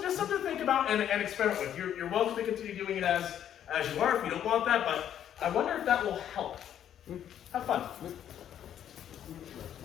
to think about and experiment with. You're welcome to continue doing it as you are if you don't want that, but I wonder if that will help. Have fun.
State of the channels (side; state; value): right; quieter; 10.1 dB